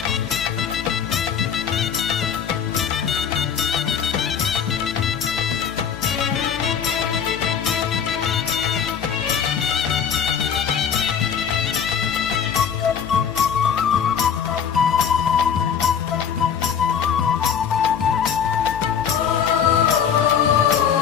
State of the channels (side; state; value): right; quieter; 7.7 dB